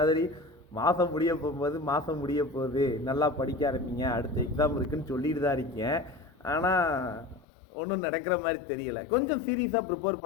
மாதம் முடிய போகுது நல்லா படிக்க ஆரம்பிங்க, அடுத்த எக்ஸாம் இருக்குன்னு சொல்லிட்டு தான் இருக்கேன். ஆனால் ஒன்றும் நடக்கிற மாதிரி தெரியலை. கொஞ்சம் சீரியஸாக ப்ரிப்பேர்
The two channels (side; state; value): right; drops out; at 7.5 s